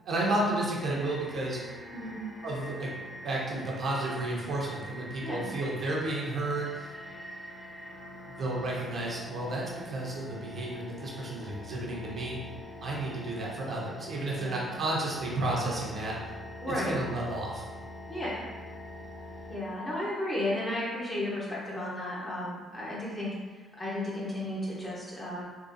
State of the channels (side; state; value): both; normal; correlation 0.64